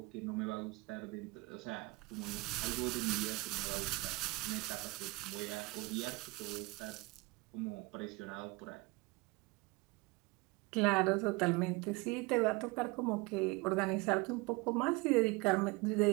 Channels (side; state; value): left; quieter; 25.0 dB